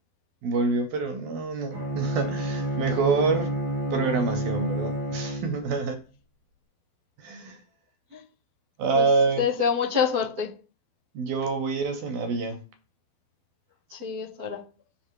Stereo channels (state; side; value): late; left; 12 ms